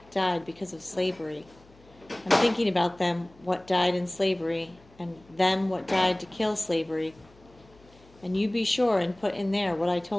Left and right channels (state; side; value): noise; left; hum, 27 dB below the sound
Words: died because of slavery. I'm thinking about them, what died in slavery, and them what died to kill slavery. And you be sure and put in there what I